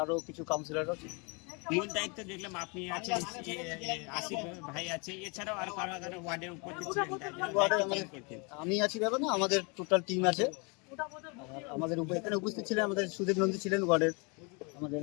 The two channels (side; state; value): right; quieter; 31.7 dB